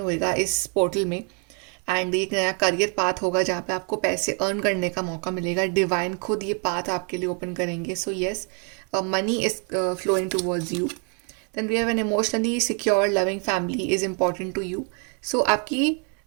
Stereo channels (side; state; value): left; quieter; 39.2 dB